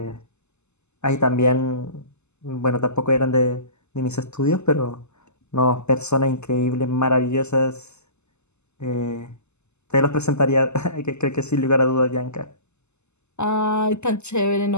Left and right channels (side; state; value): right; late; 0.82 ms